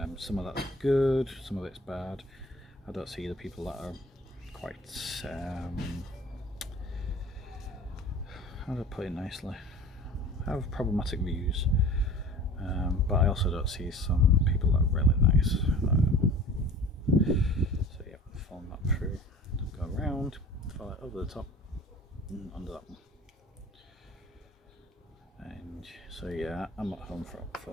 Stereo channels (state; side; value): normal; both; correlation 0.43